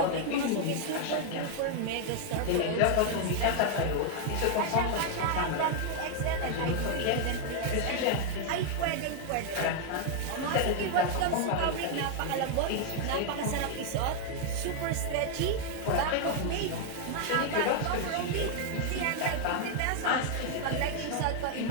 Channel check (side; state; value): both; different; correlation 0.00